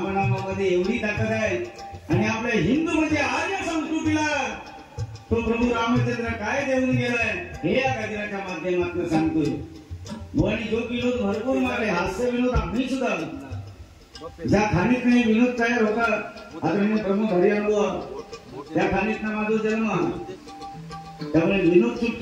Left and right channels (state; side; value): identical; both; correlation 1.00